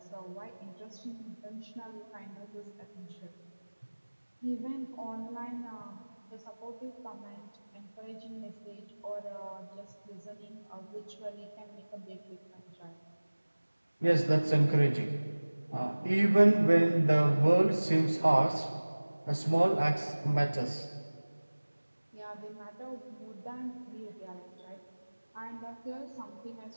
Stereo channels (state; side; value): inverted; both; correlation -1.00